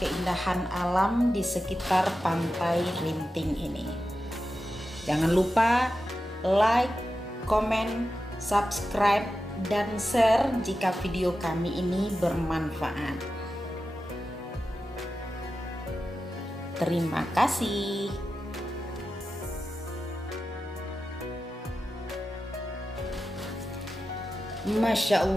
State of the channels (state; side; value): normal; both; correlation 0.92